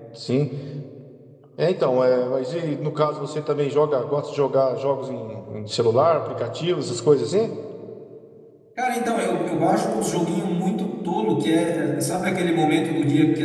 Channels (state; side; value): identical; both; correlation 1.00